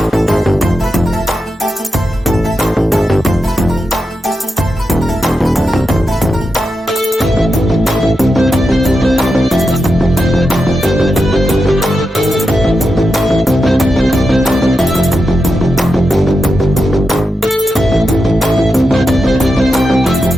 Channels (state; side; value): normal; both; correlation 0.88